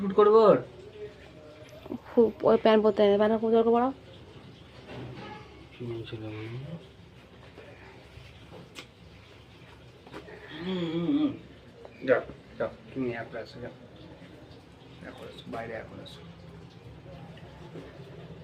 করবো। ওই প্যান্ট পরতে প্যান্ট খুব জোর পড়াও। যাও যাও, তুমি একবার আসো, যাও এখন আসো, বাইরে এখন আসো।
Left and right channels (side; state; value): both; identical; correlation 1.00